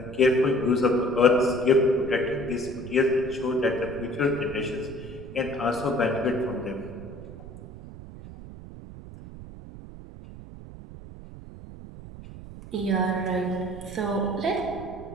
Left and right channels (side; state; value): right; noise; rumble, 14 dB below the sound